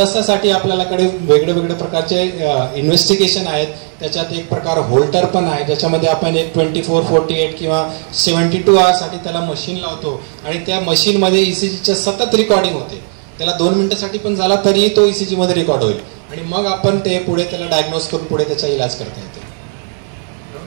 आपल्याकडे वेगळे वेगळे प्रकारचे इन्व्हेस्टिगेशन आहेत. त्याच्यात एक प्रकार होल्टर पण आहे, ज्याच्यामध्ये आपण एक 24, 48 किंवा 72 आवर्ससाठी त्याला मशीन लावतो आणि त्या मशीनमध्ये ECGच्या सतत रेकॉर्डिंग होते. त्याला 2 मिनिटासाठी पण झाला तरी तो ECG मध्ये रेकॉर्ड होईल आणि मग आपण ते पुढे त्याला डायग्नोज करून पुढे त्याचा इलाज करता येतो.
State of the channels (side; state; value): left; silent; 59 dB below the other